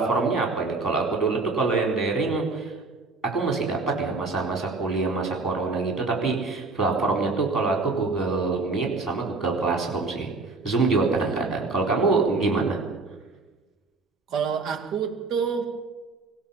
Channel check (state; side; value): quieter; left; 3.7 dB